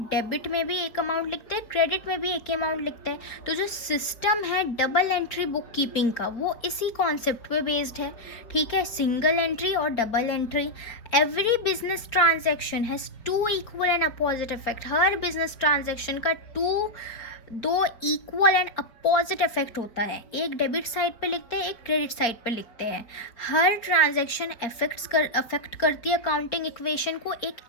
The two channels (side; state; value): right; late; 4.1 ms